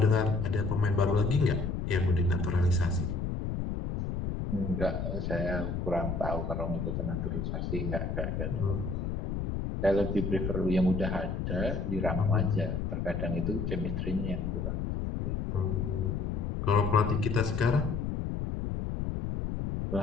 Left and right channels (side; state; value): left; noise; rumble, 2 dB below the sound